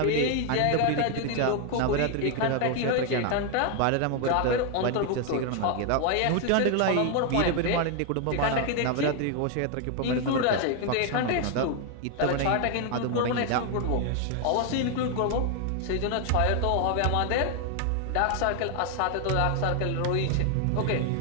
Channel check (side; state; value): both; different; correlation 0.00